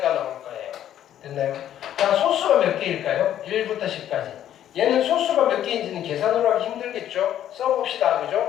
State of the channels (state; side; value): quieter; right; 11.2 dB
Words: 나올 거예요. 됐나요? 자, 소수가 몇 개일까요? 1부터 10까지. 얘는 소수가 몇 개인지는 계산으로 하기 힘들겠죠? 써봅시다.